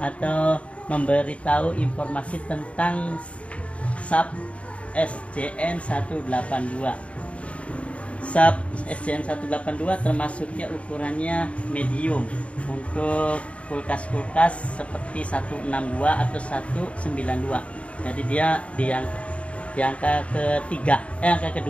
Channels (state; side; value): late; right; 0.064 ms